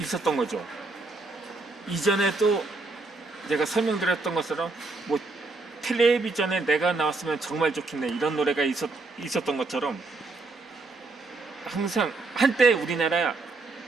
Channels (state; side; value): quieter; left; 3.5 dB